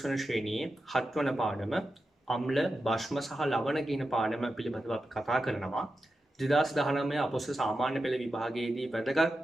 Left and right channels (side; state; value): both; normal; correlation 0.91